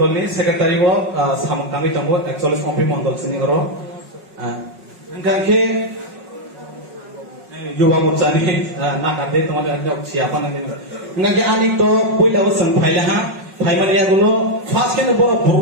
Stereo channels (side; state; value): left; late; 5.4 ms